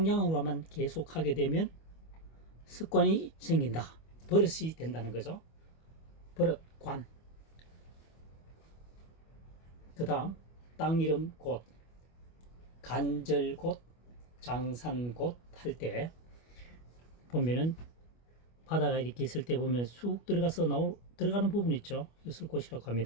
계속하게 되면 습관이 생긴다. 버릇이 된다는 거죠. 버릇관. 그 다음 땅 이름 곳, 간절 곳, 장산 곳 할 때 보면은 바다가 이렇게 있을 때 보면 쑥 들어가서 들어가는 부분 있죠. 이것을 곳이라고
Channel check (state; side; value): late; right; 25 ms